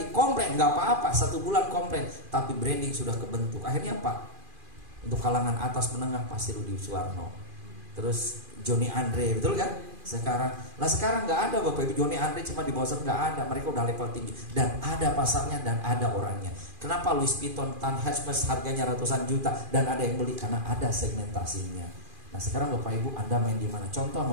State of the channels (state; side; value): late; left; 2.4 ms